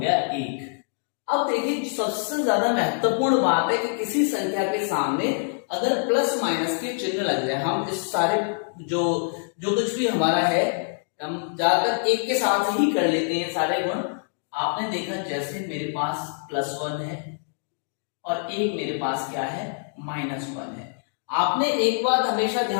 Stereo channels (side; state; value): right; silent; digital silence